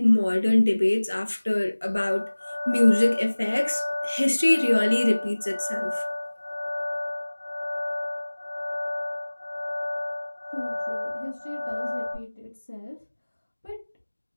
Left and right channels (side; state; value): both; inverted; correlation -1.00